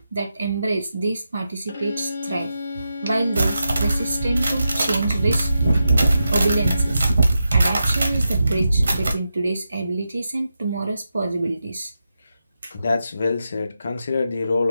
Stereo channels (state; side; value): inverted; both; correlation -0.88